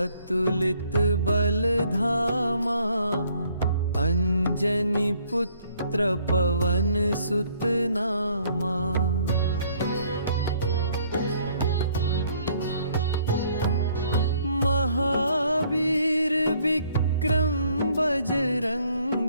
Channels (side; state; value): both; inverted; correlation -0.64